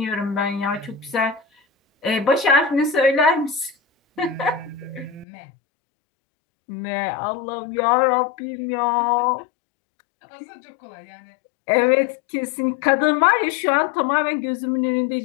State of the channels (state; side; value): drops out; right; at 5.2 s